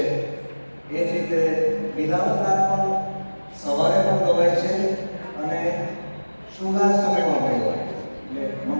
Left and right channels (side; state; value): both; inverted; correlation -1.00